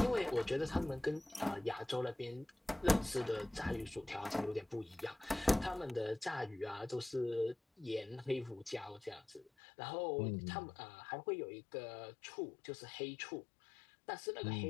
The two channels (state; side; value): drops out; right; at 9.5 s